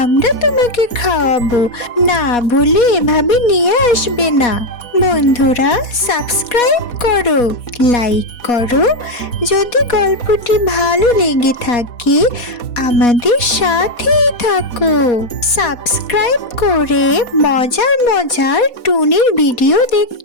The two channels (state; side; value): late; right; 4.2 ms